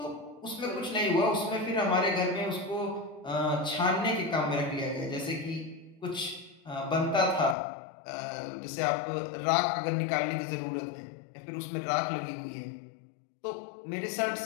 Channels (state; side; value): drops out; right; at 7.6 s